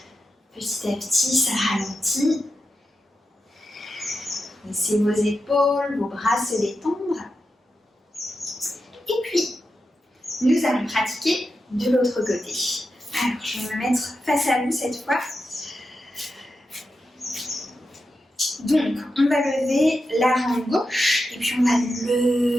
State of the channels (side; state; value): both; normal; correlation 0.89